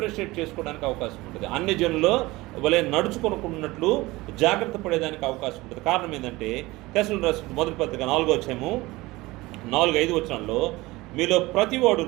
చేసుకోవడానికి అవకాశం ఉంటుంది. అన్ని జనుల్లో వలె నడుచుకొనుకున్నట్లు జాగ్రత్త పడేదానికి అవకాశం ఉంటుంది. కారణం ఏంటంటే తెస్సలోనికీయులకు రాసిన మొదటి పత్రిక 4వ అధ్యాయము 4-5 వచనాల్లో, మీలో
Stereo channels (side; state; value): left; quieter; 20.5 dB